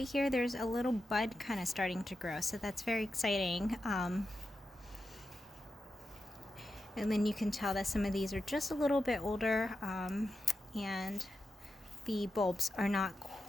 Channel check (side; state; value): both; normal; correlation 0.90